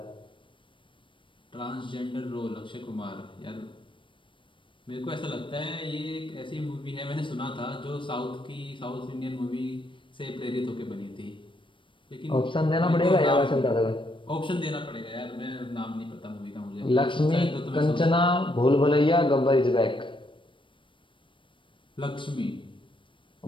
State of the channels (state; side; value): late; right; 0.25 ms